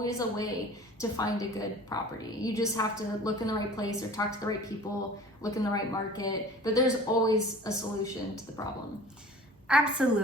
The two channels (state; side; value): normal; both; correlation 0.44